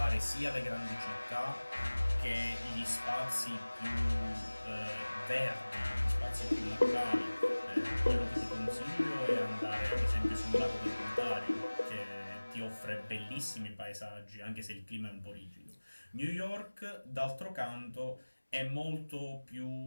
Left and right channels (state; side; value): inverted; both; correlation -1.00